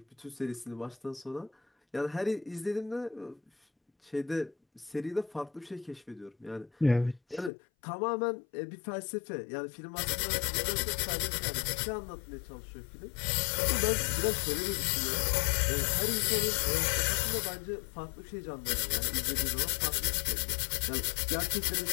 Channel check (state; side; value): drops out; right; at 7.5 s